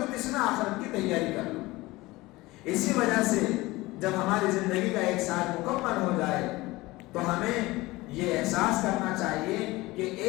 اس میں آخرت کی تیاری کر لو۔ اسی وجہ سے جب ہماری زندگی کا ایک سال مکمل ہو جائے تو ہمیں یہ احساس کرنا چاہیے کہ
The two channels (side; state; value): right; quieter; 20.4 dB